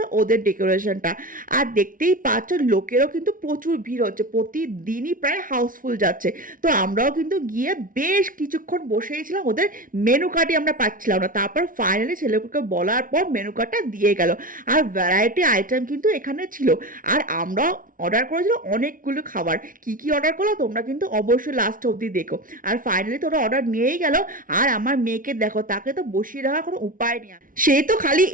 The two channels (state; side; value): late; left; 0.39 ms